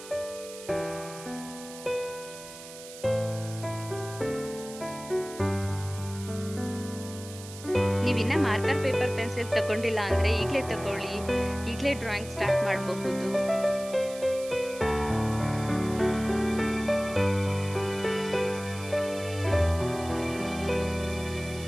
ನೀವಿನ್ನ ಮಾರ್ಕರ್, ಪೇಪರ್, ಪೆನ್ಸಿಲ್ ತಗೊಂಡಿಲ್ಲ ಅಂದ್ರೆ ಈಗಲೇ ತಗೊಳ್ಳಿ. ಈಗಲೇ ಡ್ರಾಯಿಂಗ್ ಸ್ಟಾರ್ಟ್ ಮಾಡಬಹುದು.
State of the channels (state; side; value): noise; right; hiss, 15 dB below the sound